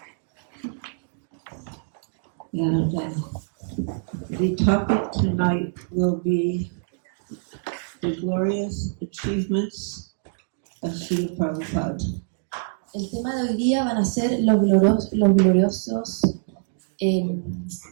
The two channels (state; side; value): silent; left; digital silence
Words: And the topic tonight will be the glorious achievements of Srila Prabhupada. El tema de hoy día van a ser los gloriosos